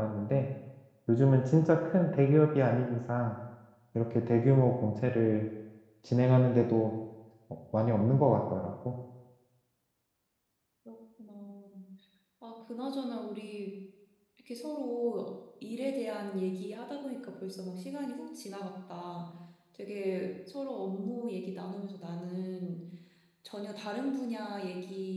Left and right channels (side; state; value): both; identical; correlation 1.00